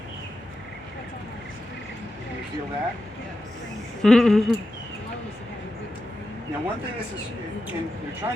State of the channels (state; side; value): normal; both; correlation 0.90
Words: Can you feel that? Now one thing is, and you're